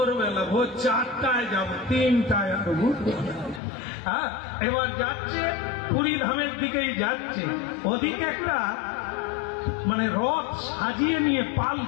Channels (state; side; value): drops out; right; at 3.6 s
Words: ভোর 4টায় যাব, 3টায় আর ঘুরবো। হ্যাঁ, এবার যাচ্ছে পুরী ধামের দিকেই যাচ্ছে, ওদিকে একটা মানে রথ সাজিয়ে নিয়ে